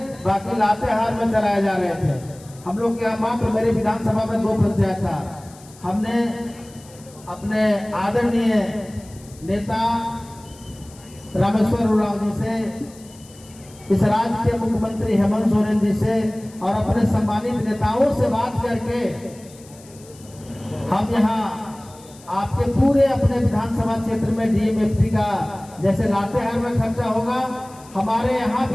बाकी लातेहार में चलाए जा रहे थे। हम लोग के यहाँ मात्र मेरे विधानसभा में 2 पंचायत था। हमने अपने आदरणीय नेता रामेश्वर उरांव जी से, इस राज्य के मुख्यमंत्री हेमंत सोरेन जी से और अपने सम्मानित नेताओं से बात करके हम यहाँ आपके पूरे अपने विधानसभा क्षेत्र में डीएमएफटी का जैसे लातेहार में खर्चा होगा, हमारे यहाँ भी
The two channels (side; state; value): left; noise; hiss, 23 dB below the sound